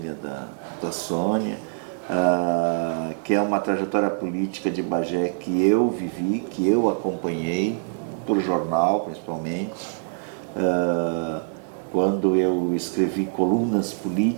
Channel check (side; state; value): left; silent; digital silence